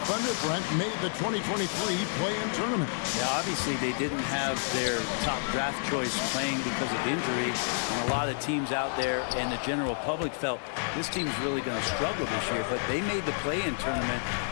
Thunder, Brent, made the 2023 play-in tournament. Yeah, obviously they didn't have their top draft choice playing because of injury. And a lot of teams out there and the general public felt this team's really going to struggle this year. But they made the play-in tournament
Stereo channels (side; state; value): right; silent; 58 dB below the other